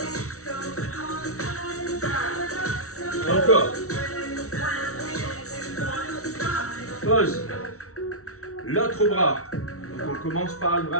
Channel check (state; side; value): late; right; 0.64 ms